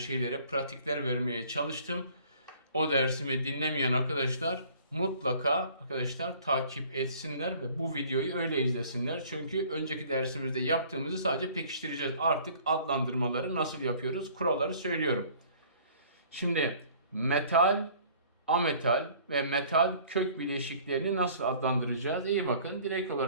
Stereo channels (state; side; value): inverted; both; correlation -0.53